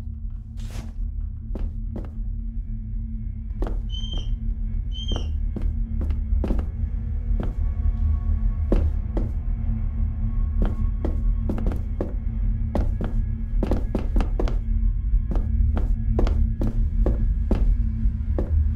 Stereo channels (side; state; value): both; identical; correlation 1.00